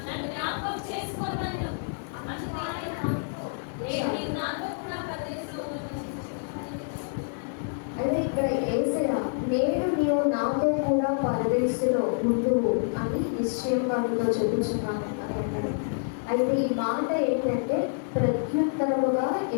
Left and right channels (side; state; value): right; silent; digital silence